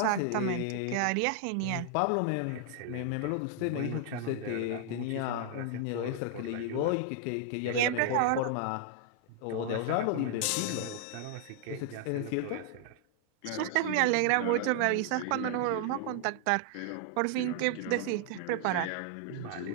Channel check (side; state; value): both; different; correlation 0.00